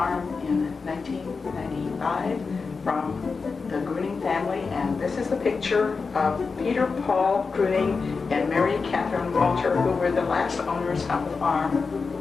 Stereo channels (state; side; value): quieter; right; 4.7 dB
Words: in 1995 from the Gruning family, and this is the picture of Peter Paul Gruning and Mary Catherine Walter, who were the last owners of the farm.